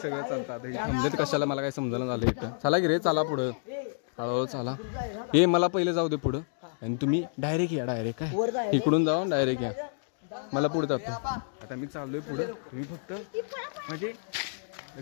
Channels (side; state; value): right; silent; digital silence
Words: चालतं. आता हे थांबलेत कशाला मला काही समजायला झालं इथं. चला की रे, चला पुढं, हळूहळू चला. हे मला पहिले जाऊ दे पुढं आणि तुम्ही डायरेक्ट या. डायरेक्ट काय इकडून जावा, डायरेक्ट या. मला पुढे जातो. आता मी चाललोय पुढं. तुम्ही फक्त म्हणजे